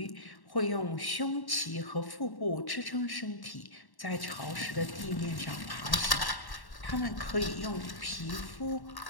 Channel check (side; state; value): right; late; 1.1 ms